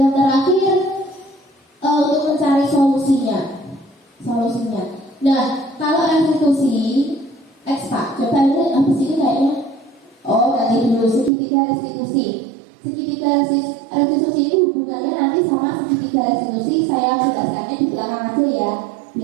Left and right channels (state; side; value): drops out; left; at 11.3 s